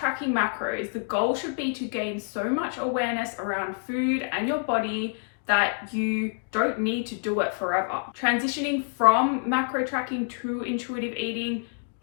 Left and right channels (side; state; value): right; silent; 60 dB below the other